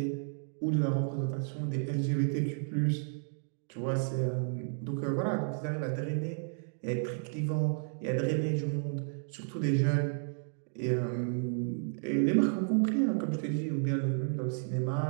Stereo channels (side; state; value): left; silent; digital silence